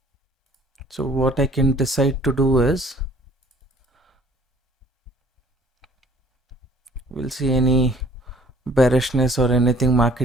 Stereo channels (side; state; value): both; normal; correlation 0.55